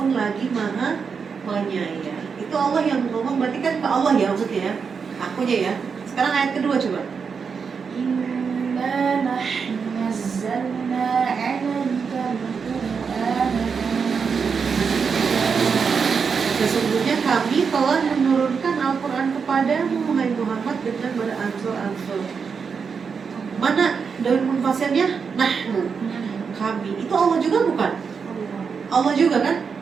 lagi maha penyayang. Itu Allah yang ngomong, berarti kan ke Allah ya maksudnya ya. Akunya ya. Sekarang ayat kedua coba. Inna nahnu nazzalna 'alaikal Qur'ana. Sesungguhnya kami telah menurunkan Al-Quran kepadamu, wahai Muhammad, dengan beransur-ansur. Mana daun munfasilnya? Nahnu, kami. Itu Allah juga bukan? Allah juga kan?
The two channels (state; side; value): quieter; left; 5.8 dB